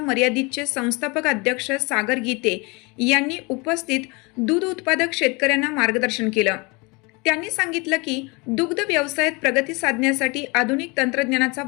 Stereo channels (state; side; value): quieter; right; 27.6 dB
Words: संस्थापक अध्यक्ष सागर गीते यांनी उपस्थित दूध उत्पादक शेतकऱ्यांना मार्गदर्शन केलं. त्यांनी सांगितलं की दुग्ध व्यवसायात प्रगती साधण्यासाठी आधुनिक तंत्रज्ञानाचा